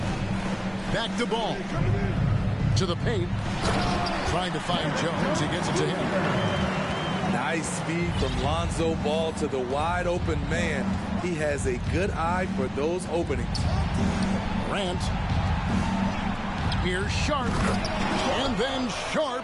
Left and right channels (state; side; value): identical; both; correlation 1.00